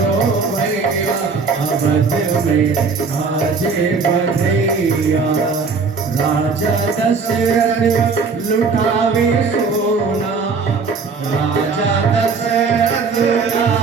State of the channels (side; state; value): left; quieter; 4.9 dB